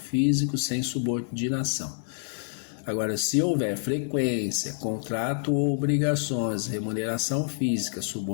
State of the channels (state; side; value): silent; right; 57 dB below the other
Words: sem subordinação. Agora, se houver frequência, contrato ou obrigações, remuneração física,